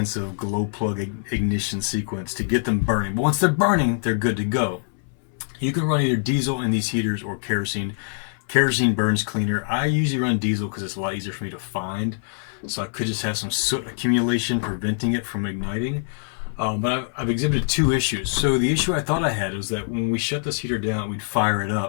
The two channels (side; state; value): right; silent; 63 dB below the other